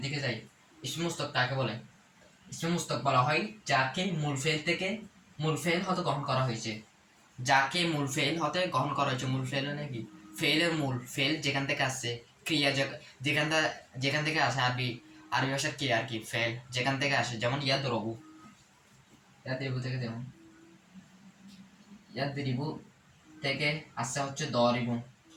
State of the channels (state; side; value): identical; both; correlation 1.00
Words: দিকে যাই। ইসমে মুস্তক কাকে বলে? ইসমে মুস্তক বলা হয় যাকে মূল ফেল থেকে মূল ফেল হতে গ্রহণ করা হয়েছে। যাকে মূল ফেল হতে গ্রহণ করা হয়েছে। মূল ফেল নাকি ফেলের মূল ফেল যেখান থেকে আসছে, ক্রিয়া যেখান থেকে আসে। আরবি আরবি ভাষার ক্রিয়া আর কি ফেল যেখান থেকে আসে। যেমন ইয়াদ রবু থেকে, যেমন ইয়াদ রিবু থেকে আসছে হচ্ছে